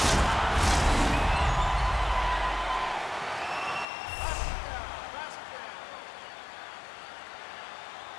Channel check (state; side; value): drops out; right; at 3.9 s